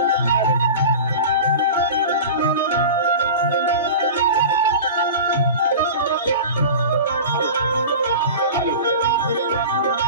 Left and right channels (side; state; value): both; inverted; correlation -0.33